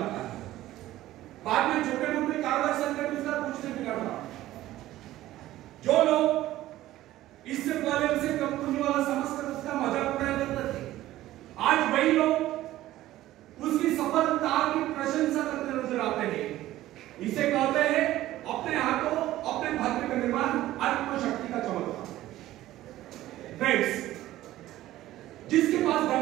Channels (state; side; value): quieter; left; 15.1 dB